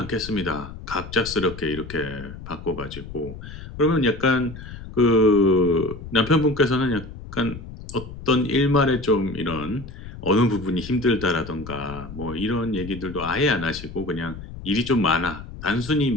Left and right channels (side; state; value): left; noise; rumble, 13 dB below the sound